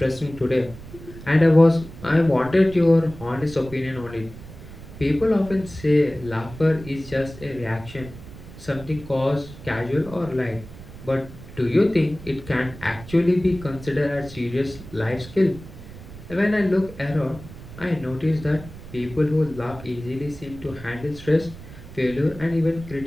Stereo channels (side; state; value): right; noise; rumble, 16 dB below the sound